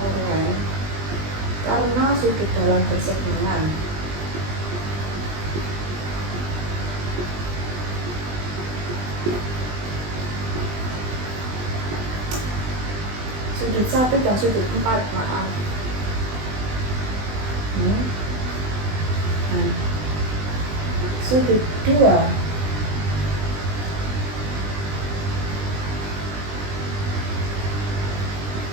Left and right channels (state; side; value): late; left; 20 ms